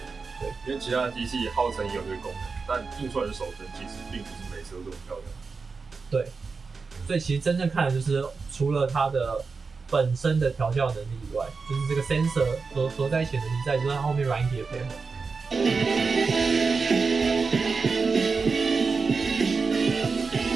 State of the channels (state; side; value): quieter; left; 4.7 dB